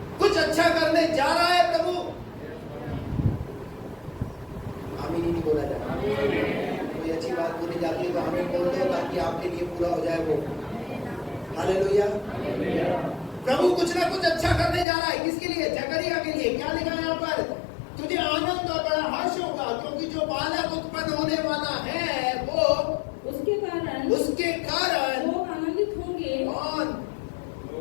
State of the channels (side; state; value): right; drops out; at 14.9 s